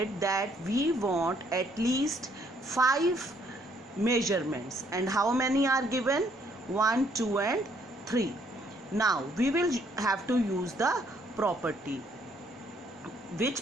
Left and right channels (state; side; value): normal; both; correlation 0.67